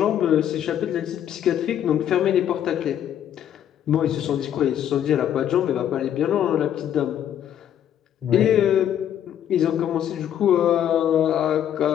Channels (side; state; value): right; quieter; 10.2 dB